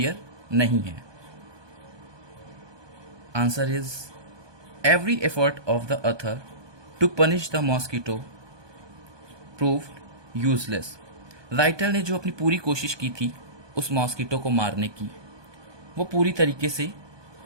नहीं है? Answer is, every effort of the author to punish the mosquito proved useless. Writer ने जो अपनी पूरी कोशिश की थी उस मॉस्किटो को मारने की, वो पूरी तरीके से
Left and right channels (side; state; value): left; late; 1.2 ms